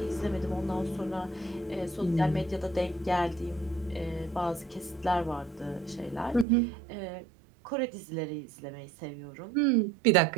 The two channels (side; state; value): left; drops out; at 6.5 s